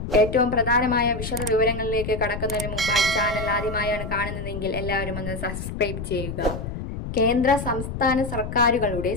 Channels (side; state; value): left; noise; rumble, 7 dB below the sound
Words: ഏറ്റവും പ്രധാനമായ വിശദ വിവരങ്ങളിലേക്ക് കടക്കുന്നതിന് മുമ്പായി ചാനൽ ആദ്യമായാണ് കാണുന്നതെങ്കിൽ എല്ലാവരും ഒന്ന് സബ്സ്ക്രൈബ് ചെയ്യുക. കേന്ദ്ര സംസ്ഥാന സർക്കാരുകളുടെ